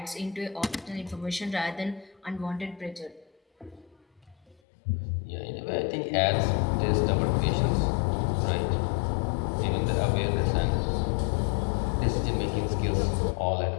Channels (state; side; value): drops out; right; at 4.6 s